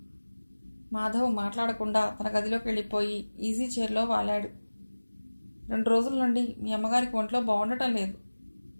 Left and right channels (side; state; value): both; inverted; correlation -1.00